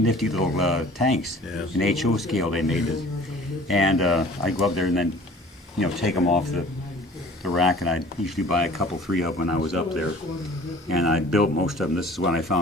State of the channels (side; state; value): both; normal; correlation 0.48